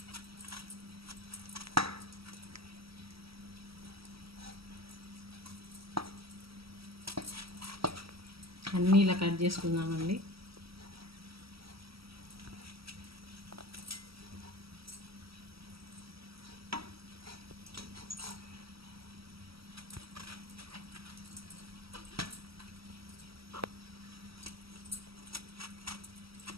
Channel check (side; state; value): left; late; 0.75 ms